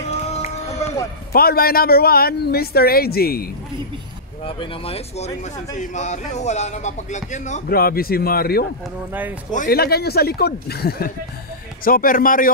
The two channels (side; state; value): both; normal; correlation -0.16